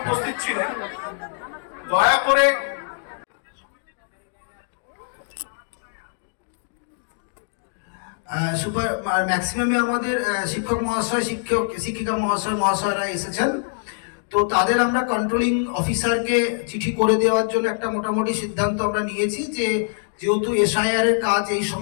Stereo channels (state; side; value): silent; right; digital silence